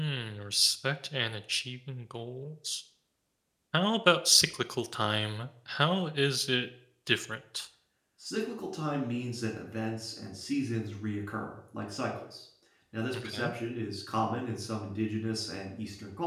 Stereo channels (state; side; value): identical; both; correlation 1.00